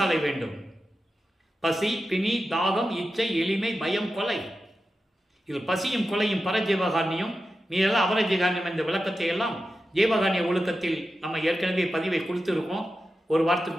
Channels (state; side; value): normal; both; correlation 0.91